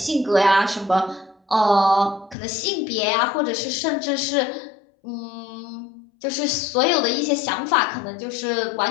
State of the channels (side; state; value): right; drops out; at 2.4 s